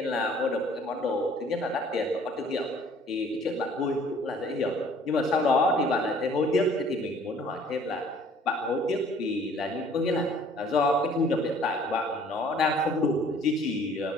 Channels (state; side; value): normal; both; correlation 0.55